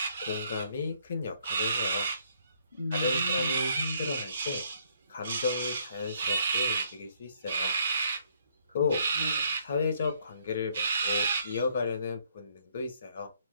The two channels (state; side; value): inverted; both; correlation -0.67